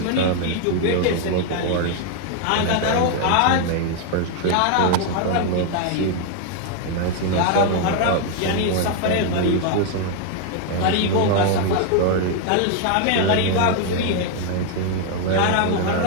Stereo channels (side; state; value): both; different; correlation 0.01